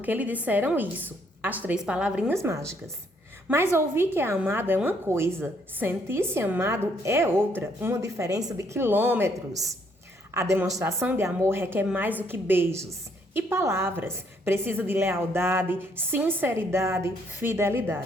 lhe disseram isso. As 3 palavrinhas mágicas. Mas ouvir que é amado é uma coisa. Sentir-se amado é outra. Uma diferença de quilômetros. A demonstração de amor requer mais do que beijos e palavras. Precisa de lealdade, sinceridade,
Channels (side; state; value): both; normal; correlation 0.69